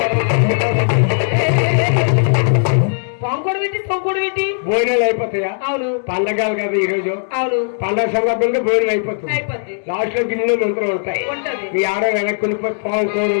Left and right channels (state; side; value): silent; right; digital silence